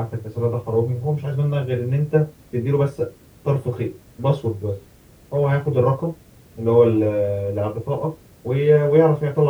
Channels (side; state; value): both; identical; correlation 1.00